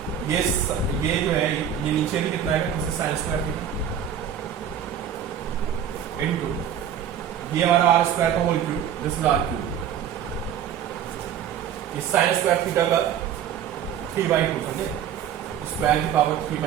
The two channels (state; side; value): quieter; left; 9.2 dB